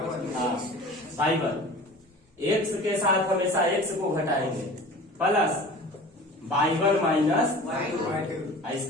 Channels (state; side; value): normal; both; correlation 0.40